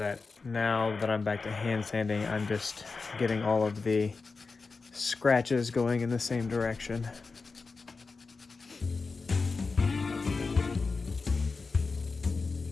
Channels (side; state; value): right; quieter; 4.3 dB